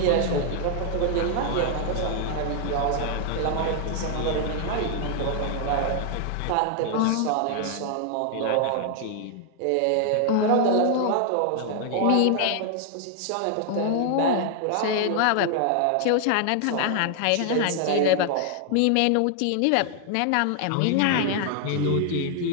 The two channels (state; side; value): different; both; correlation 0.00